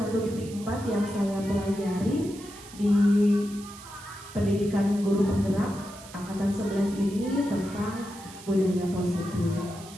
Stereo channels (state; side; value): noise; right; hiss, 18 dB below the sound